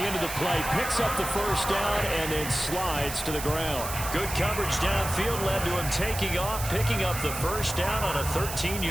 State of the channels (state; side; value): noise; right; hiss, 7 dB below the sound